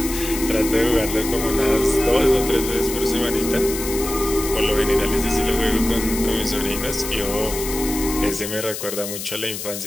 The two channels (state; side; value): noise; left; hiss, 7 dB below the sound